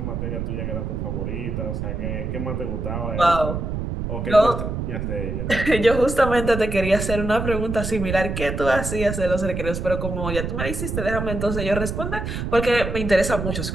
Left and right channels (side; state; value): right; noise; rumble, 4 dB below the sound